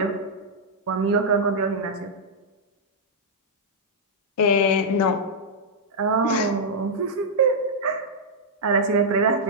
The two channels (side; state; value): both; normal; correlation -0.08